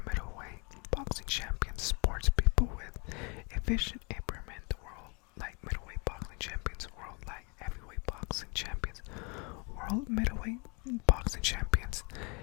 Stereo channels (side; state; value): right; quieter; 30.7 dB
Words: middleweight boxing champions, sports people with a vision impairment, the world light middleweight boxing champions, world light heavyweight boxing champions, world middleweight boxing champions,